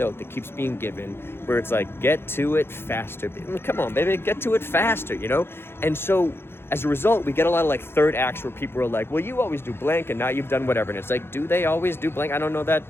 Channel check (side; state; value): right; late; 0.11 ms